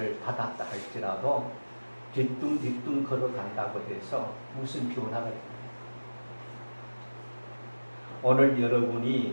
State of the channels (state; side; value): inverted; both; correlation -1.00